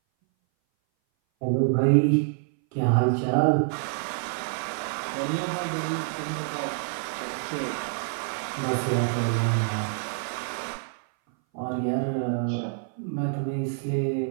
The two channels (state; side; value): silent; left; 58 dB below the other